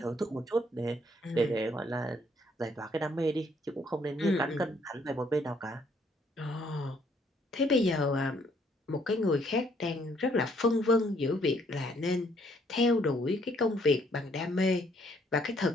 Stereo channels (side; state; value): both; normal; correlation 0.67